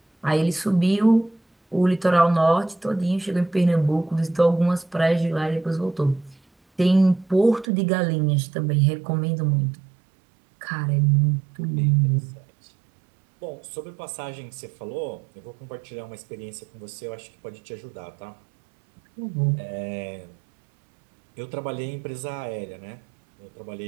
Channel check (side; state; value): left; drops out; at 7.7 s